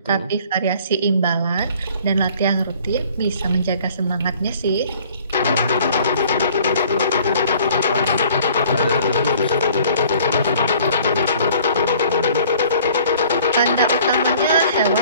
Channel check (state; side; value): inverted; both; correlation -0.54